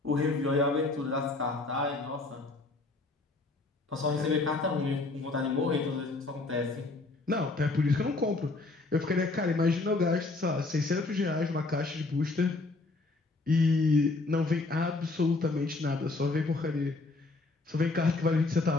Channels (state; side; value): quieter; right; 3.4 dB